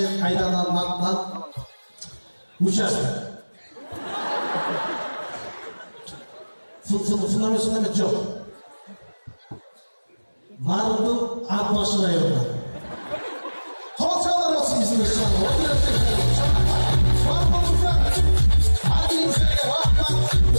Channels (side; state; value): both; inverted; correlation -1.00